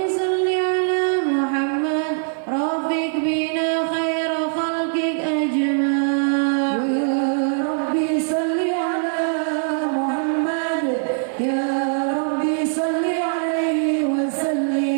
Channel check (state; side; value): silent; left; digital silence